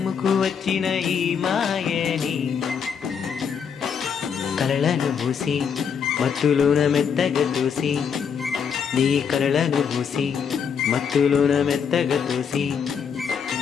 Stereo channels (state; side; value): quieter; right; 7.0 dB